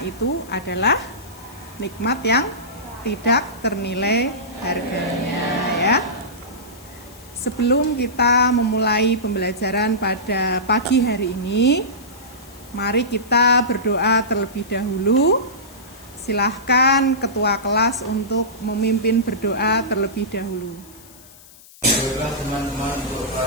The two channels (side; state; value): left; noise; hiss, 22 dB below the sound